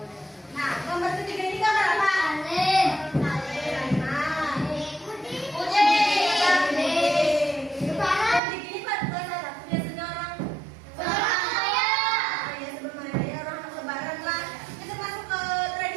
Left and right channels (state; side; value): drops out; left; at 8.4 s